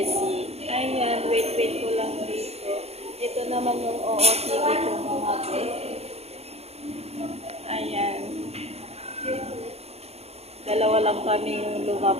Ayan, wait ko lang dito. Ito naman yung OOTD ko, mga besi. Ayan. Dalawa lang kami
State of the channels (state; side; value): late; left; 0.30 ms